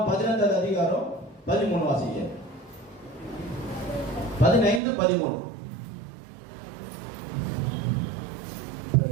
15 அதிகாரம் 13 வாசிங்க. 15:13.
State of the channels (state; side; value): drops out; left; at 4.8 s